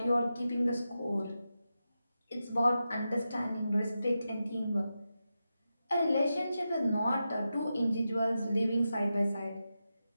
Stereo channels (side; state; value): both; inverted; correlation -0.90